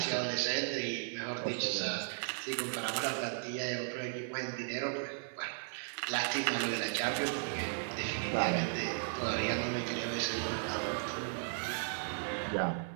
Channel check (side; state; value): left; silent; 54 dB below the other